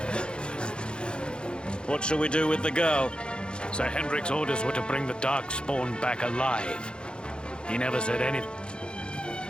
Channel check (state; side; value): late; right; 0.052 ms